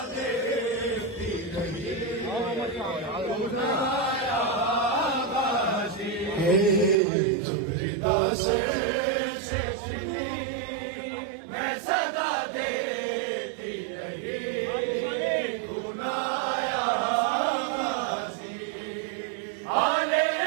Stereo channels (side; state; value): left; drops out; at 7.0 s